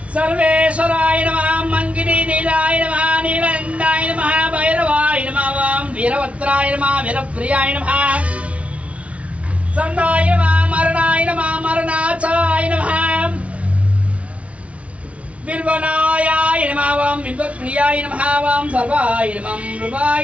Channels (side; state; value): left; late; 0.063 ms